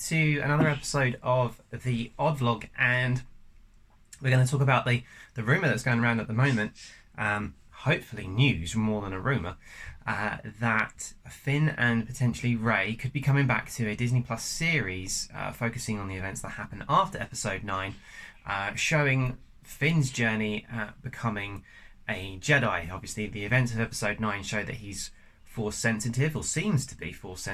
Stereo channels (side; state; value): both; identical; correlation 1.00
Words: another episode of the Odd Vlog. And we're going to talk about the rumour that's going around at the moment, hopefully news more than a rumour, that Finn and potentially Rey could be coming back to a Disney Plus series focusing on the events that happen after Episode 9, showing Finn's journey at becoming a Jedi. Obviously, the events of Episode 9 show that he's Force sensitive, or seems to be Force